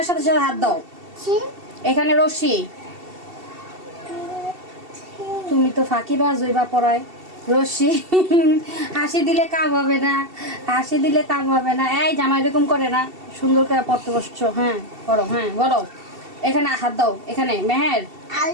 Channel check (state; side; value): late; left; 2.7 ms